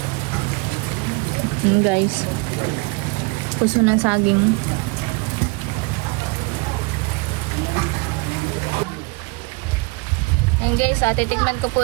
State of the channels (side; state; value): left; quieter; 27.3 dB